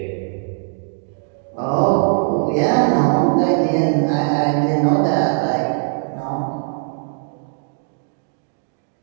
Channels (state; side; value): silent; left; 66 dB below the other